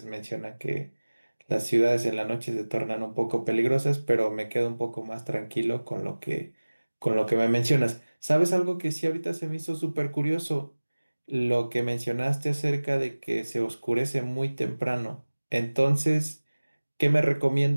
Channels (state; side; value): inverted; both; correlation -1.00